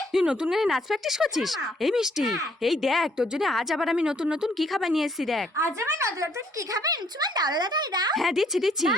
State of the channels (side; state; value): both; normal; correlation 0.65